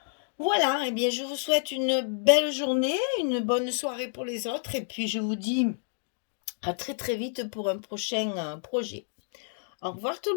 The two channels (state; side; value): silent; right; digital silence